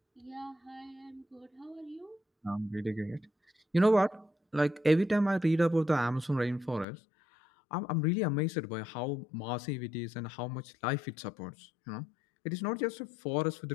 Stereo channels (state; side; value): drops out; right; at 6.9 s